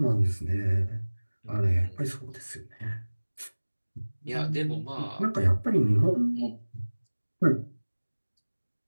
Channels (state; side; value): inverted; both; correlation -1.00